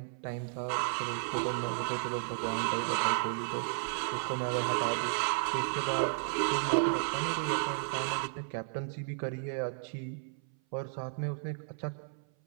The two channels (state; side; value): silent; left; 55 dB below the other